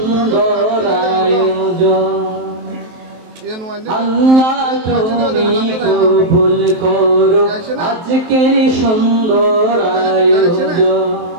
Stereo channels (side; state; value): left; late; 23 ms